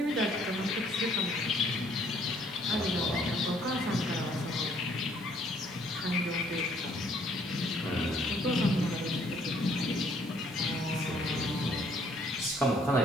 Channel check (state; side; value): noise; left; hiss, 24 dB below the sound